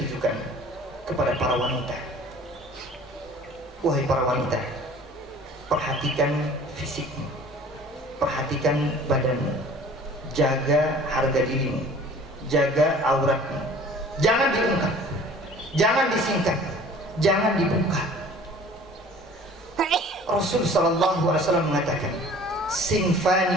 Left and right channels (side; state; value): both; normal; correlation 0.48